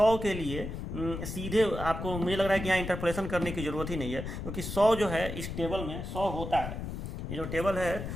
के लिए सीधे आपको मुझे लग रहा है कि यहाँ इंटरपोलेशन करने की ज़रूरत ही नहीं है, क्योंकि 100 जो है इस टेबल में 100 होता है। ये जो टेबल है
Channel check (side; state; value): left; noise; rumble, 6 dB below the sound